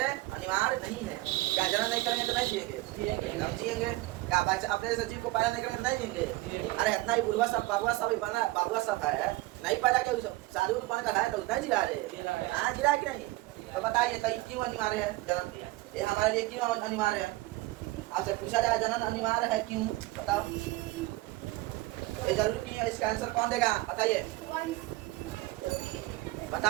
नहीं है। क्या जन्म नहीं करेंगे तो नहीं जिएंगे? हम जिएंगे। क्या अपने जैसे जीव को पैदा नहीं करेंगे तो नहीं जिएंगे? अरे इतना ही बुढ़वा सब बाबुआ सब बना, बाबुआ सब है नहीं पैदा किया, साधु को बन का है तो उतना ही जिला रहे। हाँ जिला कि नहीं? तो बताइए तो क्यों अनिवार्य है जन्म? ये हमारे लिए क्यों अनिवार्य है? आपसे पूछा जाए जन्म अनिवार्य है क्यों, बताओ। ये जरूरी नहीं है, इसका आंसर कौन देगा बताइए?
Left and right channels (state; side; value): quieter; left; 19.5 dB